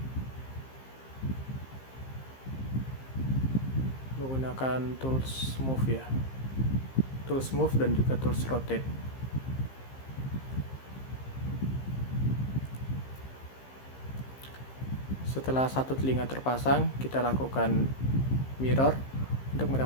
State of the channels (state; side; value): late; right; 15 ms